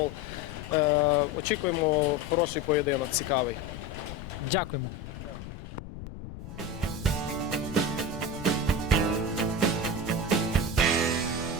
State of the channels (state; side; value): noise; left; rumble, 11 dB below the sound